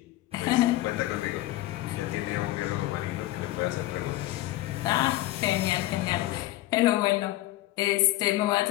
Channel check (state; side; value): quieter; right; 16.7 dB